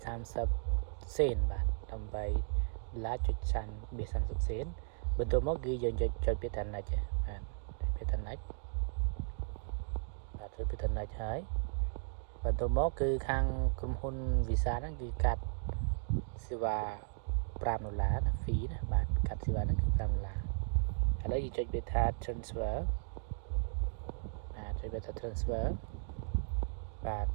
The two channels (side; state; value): left; silent; digital silence